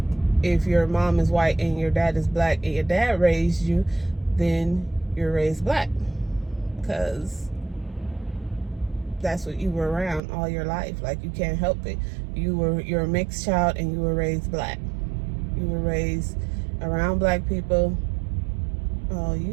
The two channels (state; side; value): drops out; left; at 10.2 s